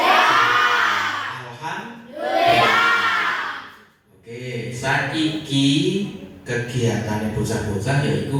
Alhamdulillah. Oke, saiki kegiatan bocah-bocah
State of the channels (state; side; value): identical; both; correlation 1.00